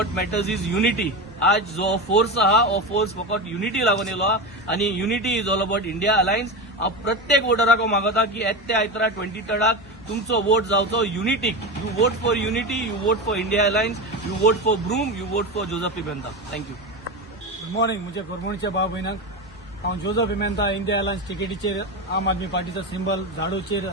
matters is unity. आज जो फोर्स आहा हो फोर्स फकत युनिटी लागून येलो आहा आणि unity is all about India alliance. हांव प्रत्येक वोटराक मागता की येत्या आयतारा 23rd तुमचो वोट जावचो युनिटीक. You vote for unity, you vote for India alliance, you vote for broom, you vote for Joseph Pimenta. Thank you. Good morning. मुझे कोरमणचे भाव भयणांक हांव जोझफ पिमेंता इंडिया अलायन्स टिकेटीचेर आम आदमी पार्टीचो सिंबल झाडूचेर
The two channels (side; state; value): both; normal; correlation 0.20